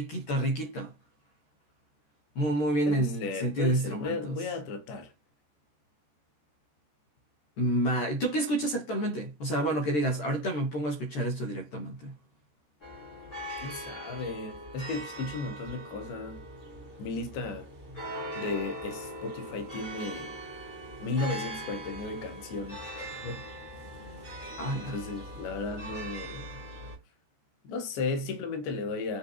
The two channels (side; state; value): right; late; 13 ms